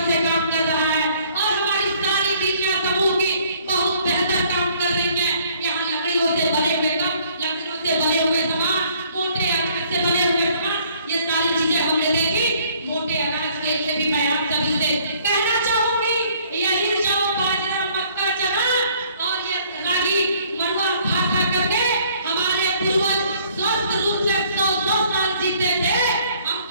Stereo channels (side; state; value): both; inverted; correlation -0.61